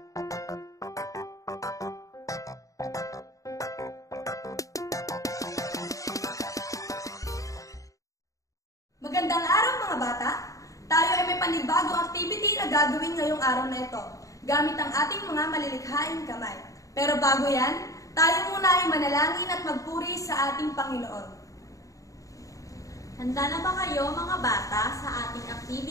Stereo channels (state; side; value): late; right; 0.16 ms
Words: araw mga bata! Tayo ay may panibagong activity na gagawin ngayong araw na ito, gamit ang ating mga malilikhaing kamay. Pero bago yan, tayo muna ay manalangin at magpuri sa ating Panginoon. Handa na ba kayo mga bata sa ating